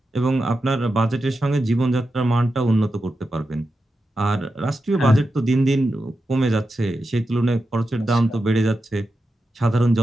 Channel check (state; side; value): normal; both; correlation 0.90